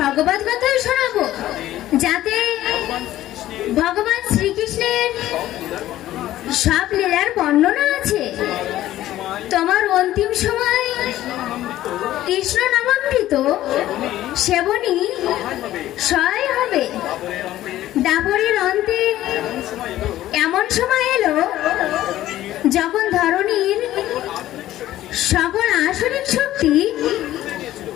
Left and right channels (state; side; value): quieter; right; 14.1 dB